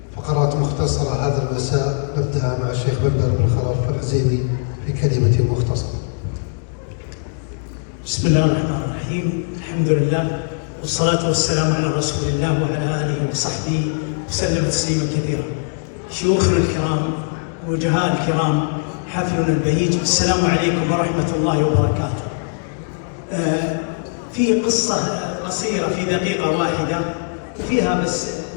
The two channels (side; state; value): right; silent; digital silence